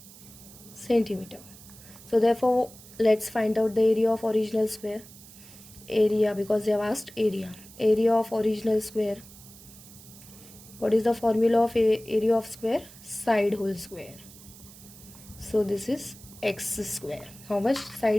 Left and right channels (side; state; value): right; noise; hiss, 20 dB below the sound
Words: centimeter. So therefore, let's find out the area of original square. Area, because they have asked area. Area of original square. What is the formula of area of square? Side whole square. So this is x square. How much?